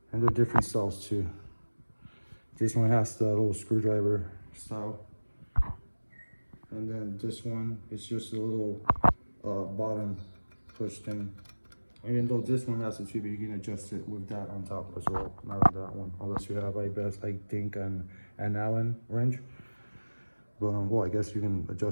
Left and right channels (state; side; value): inverted; both; correlation -1.00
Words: And they're different styles too. This one has the little screwdriver style. And then this one is just a little bottom push thing. Even though this one has a tube, you can adjust it with that on top as well. Not on that one, unless you have, I think, an Allen wrench. But well, I guess you can